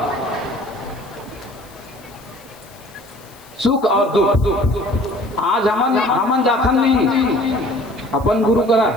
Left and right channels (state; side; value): noise; left; hiss, 25 dB below the sound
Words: सुख और दुख आज हमन जाथन नहीं, अपन गुरु करा